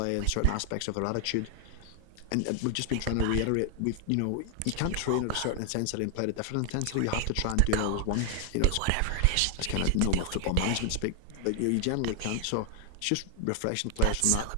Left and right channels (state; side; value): different; both; correlation 0.00